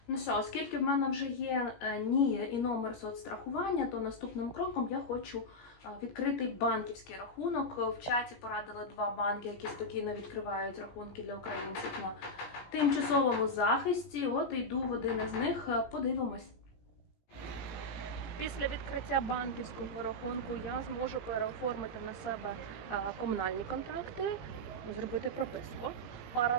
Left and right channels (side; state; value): right; late; 17 ms